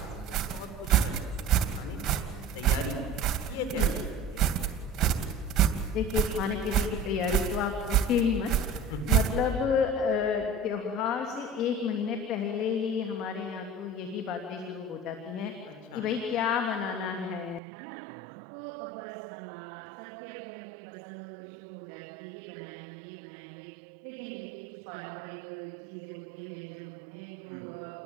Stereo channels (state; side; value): drops out; left; at 17.6 s